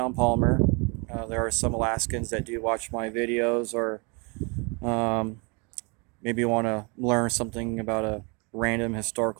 Palmer. There are some Alaskans that do watch my videos, or um, maybe want to learn something about a random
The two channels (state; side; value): quieter; left; 31.8 dB